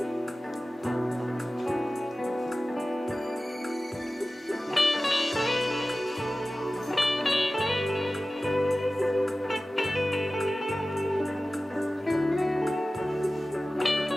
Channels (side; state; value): both; normal; correlation 0.96